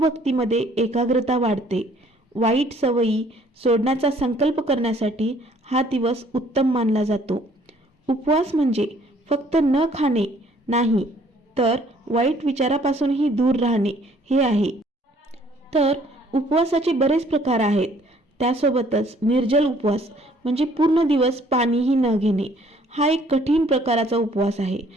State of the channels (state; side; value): normal; both; correlation 0.60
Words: एकाग्रता वाढते। वाईट सवयी सोडण्याचा संकल्प करण्यासाठी हा दिवस उत्तम मानला जातो। उपवास म्हणजे फक्त न खाणे नाही तर वाईट विचारापासूनही दूर राहणे हे आहे। तर उपवासाचे बरेच प्रकार आहेत। त्यासोबतच निर्जल उपवास म्हणजे पूर्ण दिवस पाणीही न घेणे हा एक कठीण प्रकाराचा उपवास आहे।